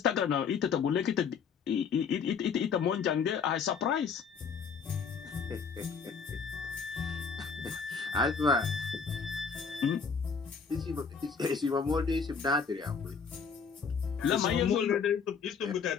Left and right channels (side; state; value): right; quieter; 5.9 dB